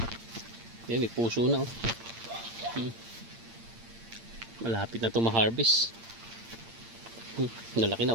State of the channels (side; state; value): left; late; 8.7 ms